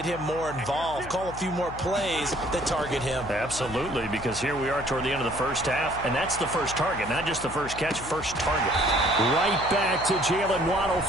him more involved, call a few more plays that target him. Absolutely, because here we are toward the end of the first half, and that's the first target, not just the first catch, first target. Right back to Jalen Waddle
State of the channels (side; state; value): left; noise; hum, 13 dB below the sound